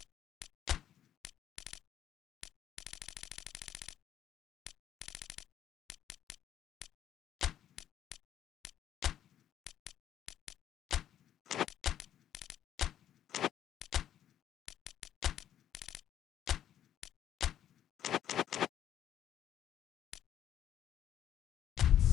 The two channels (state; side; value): quieter; right; 10.8 dB